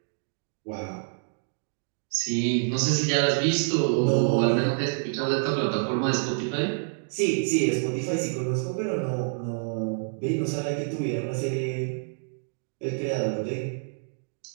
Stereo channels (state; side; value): silent; left; digital silence